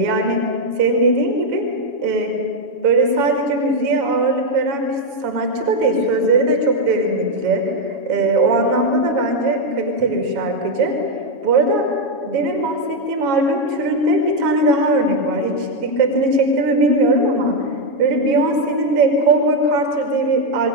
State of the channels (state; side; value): late; left; 7.2 ms